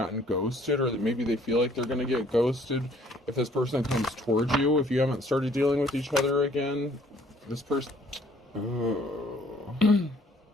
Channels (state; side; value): normal; both; correlation 0.60